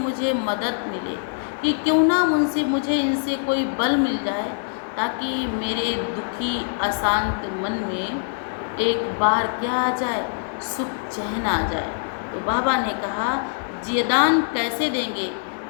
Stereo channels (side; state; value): right; silent; digital silence